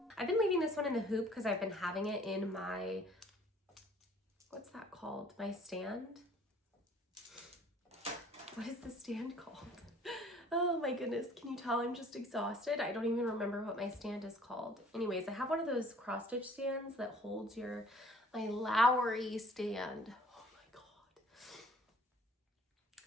I've been leaving this one in the hoop because I've been having it in my, what's that called? My stand? What is the stand called? Oh my goodness, can you tell I'm just exhausted? I don't even remember what my stand is called. Anyways, I have one of those cross stitch stands that holds my Lowry stand. Oh my God.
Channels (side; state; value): both; normal; correlation 0.54